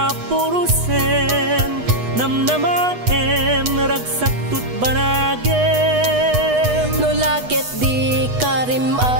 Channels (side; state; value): left; late; 8.2 ms